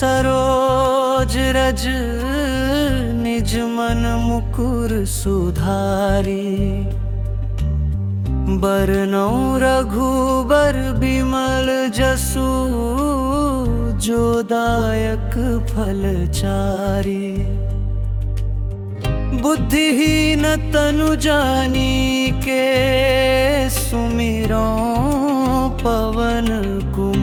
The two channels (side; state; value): both; identical; correlation 1.00